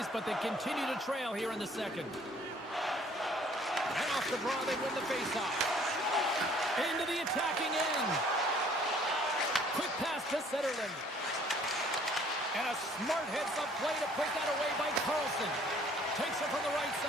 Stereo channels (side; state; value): both; normal; correlation 0.58